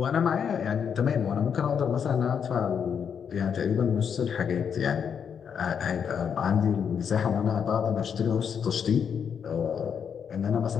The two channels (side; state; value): right; quieter; 7.3 dB